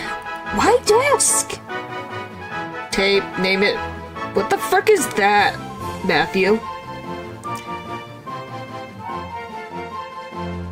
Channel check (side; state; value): both; identical; correlation 1.00